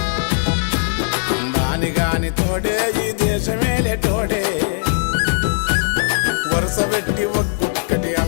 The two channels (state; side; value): silent; right; digital silence